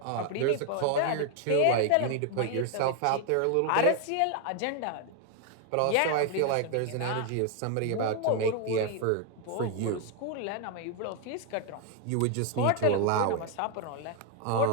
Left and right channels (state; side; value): different; both; correlation 0.00